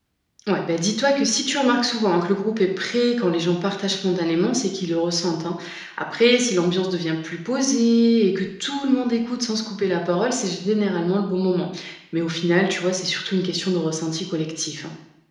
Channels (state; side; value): identical; both; correlation 1.00